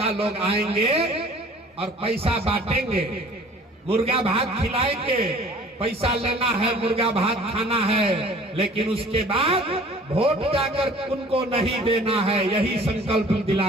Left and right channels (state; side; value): normal; both; correlation 0.50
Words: लोग आएंगे और पैसा बांटेंगे, मुर्गा भात खिलाएंगे, पैसा लेना है, मुर्गा भात खाना है, लेकिन उसके बाद वोट जाकर उनको नहीं देना है। यही संकल्प